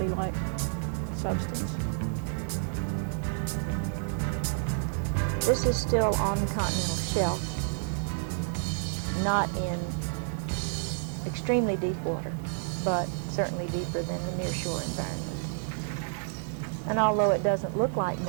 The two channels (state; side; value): silent; left; digital silence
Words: substance. This is still on the continental shelf, not in extremely deep water, but certainly deeper than the nearshore environment. And although it doesn't look like